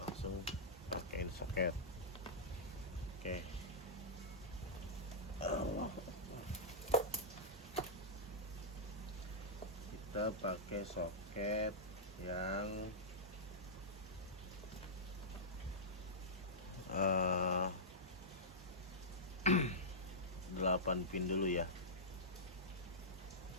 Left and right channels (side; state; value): both; normal; correlation -0.13